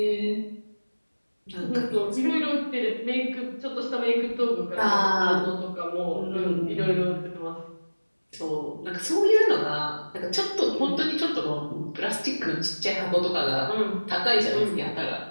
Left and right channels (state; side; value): inverted; both; correlation -1.00